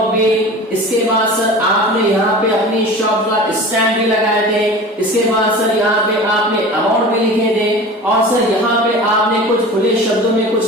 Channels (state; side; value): normal; both; correlation 0.36